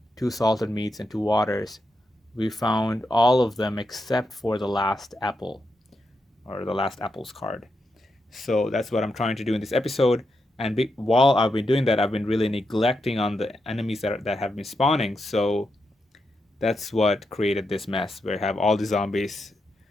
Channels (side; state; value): both; normal; correlation 0.85